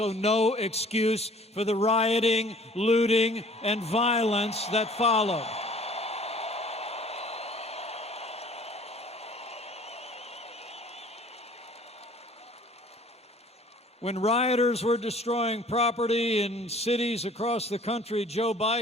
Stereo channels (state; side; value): normal; both; correlation 0.51